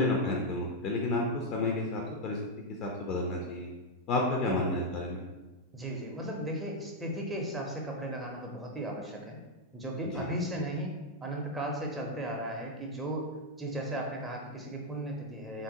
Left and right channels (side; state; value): both; normal; correlation 0.01